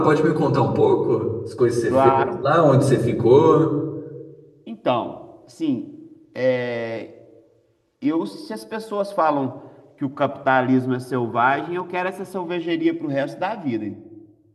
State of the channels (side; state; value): both; identical; correlation 1.00